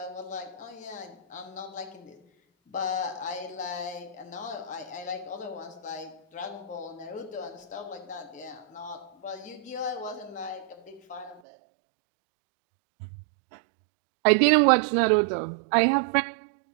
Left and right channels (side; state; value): left; drops out; at 11.4 s